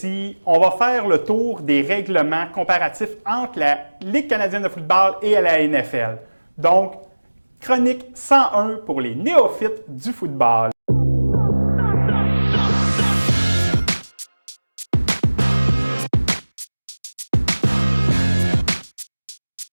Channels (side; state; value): both; inverted; correlation -1.00